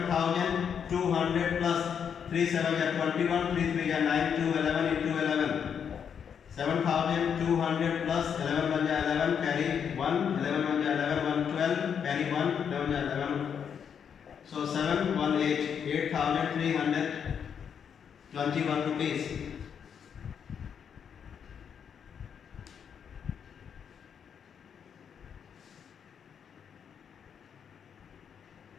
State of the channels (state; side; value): quieter; right; 7.6 dB